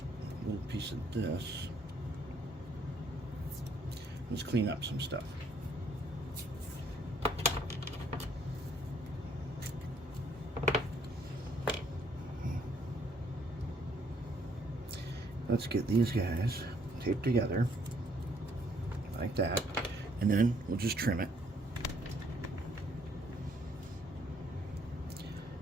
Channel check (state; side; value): normal; both; correlation 0.66